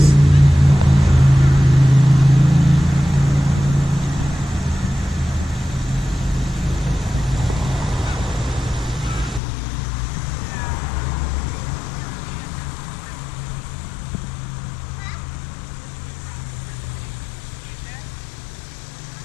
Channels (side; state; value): right; drops out; at 9.4 s